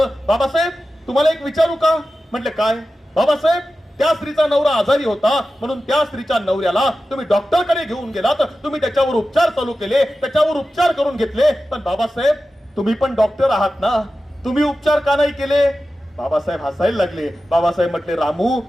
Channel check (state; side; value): normal; both; correlation 0.93